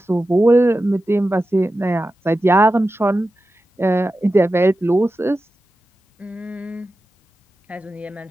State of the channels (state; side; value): normal; both; correlation 0.92